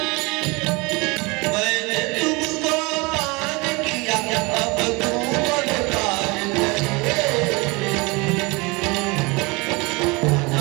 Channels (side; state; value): left; quieter; 26.2 dB